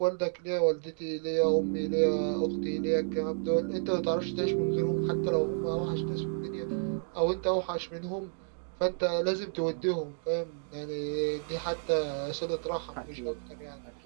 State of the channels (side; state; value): left; silent; 57 dB below the other